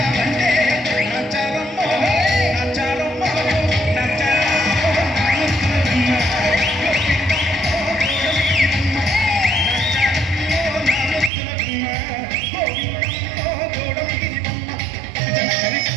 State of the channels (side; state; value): left; drops out; at 11.3 s